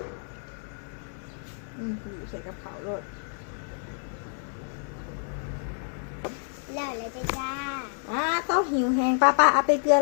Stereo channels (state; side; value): silent; right; 59 dB below the other